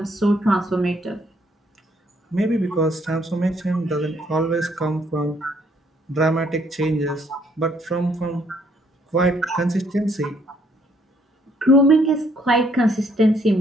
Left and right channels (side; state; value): both; normal; correlation 0.67